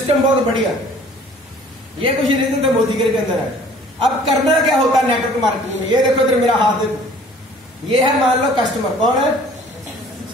बहुत बढ़िया। ये कुछ रीजन तो मोदी के अंदर है। अब करना क्या होता है नेटवर्क मार्केटिंग में, ये देखो इधर मेरा हाथ देखो, ये है मान लो कस्टमर। कौन है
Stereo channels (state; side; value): normal; both; correlation 0.52